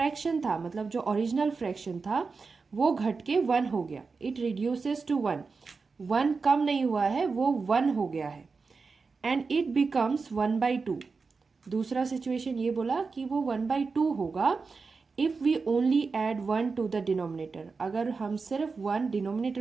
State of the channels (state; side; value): quieter; left; 4.6 dB